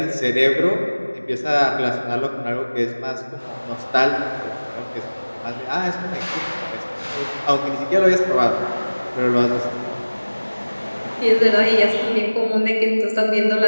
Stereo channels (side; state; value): both; inverted; correlation -1.00